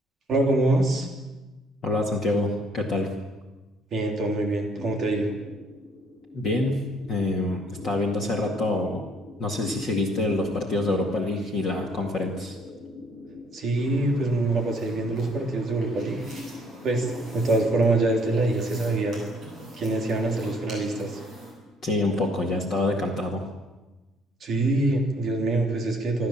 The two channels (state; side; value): normal; both; correlation 0.63